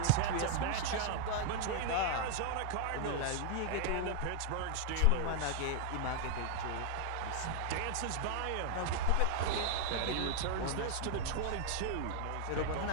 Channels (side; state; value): both; different; correlation 0.00